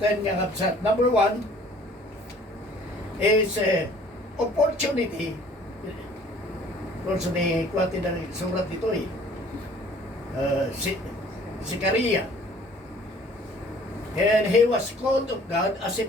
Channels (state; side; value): normal; both; correlation 0.54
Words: nga kapsat. Number 1 is opportunity course, kwati ng surat ito eh. Si Karia. And he was called of God as a